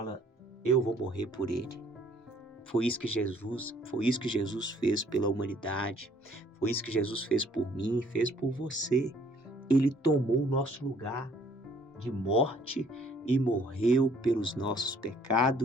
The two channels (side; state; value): both; normal; correlation 0.60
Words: eu vou morrer por ele. Foi isso que Jesus fez pela humanidade. Foi isso que Jesus fez por mim, fez por você. Ele tomou o nosso lugar de morte e morreu pelos nossos